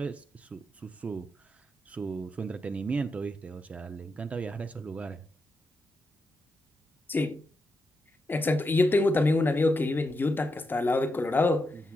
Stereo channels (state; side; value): normal; both; correlation 0.85